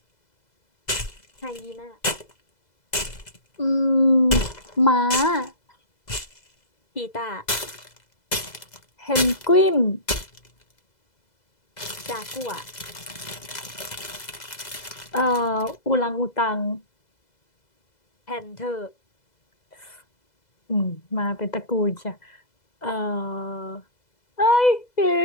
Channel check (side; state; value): right; late; 2.0 ms